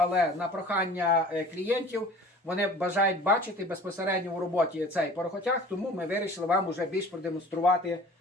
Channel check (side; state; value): both; normal; correlation 0.45